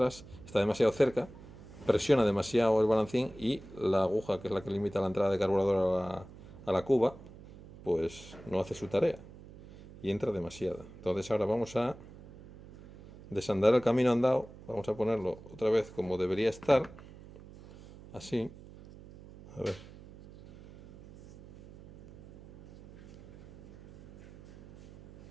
está demasiado cerca, presiona demasiado el balancín y la aguja, que es la que limita la entrada de carburador a la cuba, pues no hace su tarea y entra demasiada. Entonces ahora vamos a desandar el camino andado, vamos a ponerlo otra vez como debería estar, así, a ver.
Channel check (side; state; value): right; noise; hum, 18 dB below the sound